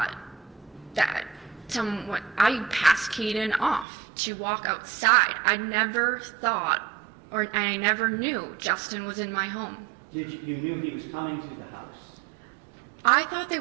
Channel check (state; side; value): drops out; left; at 3.9 s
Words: that I passed Caden off to walk outside. I never thought, or I never knew Justin was in my home. You knew he was coming to the house? I thought they